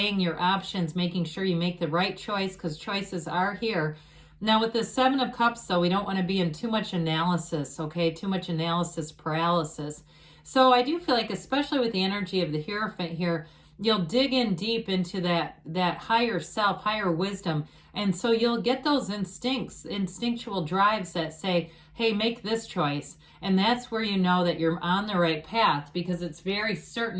your options, making sure you make the right choice, because choices are here. Now with the Seven of Cups, though, we don't want to be in too much analysis, okay? Too much analysis paralysis. So I do feel like, especially with the energy of the Hierophant here, you'll dig in deep into that higher self, higher wisdom. And so you'll get those instinctual drives that say, hey, make this choice. And that's where you know that you're on the right path, because it's very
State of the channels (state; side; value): identical; both; correlation 1.00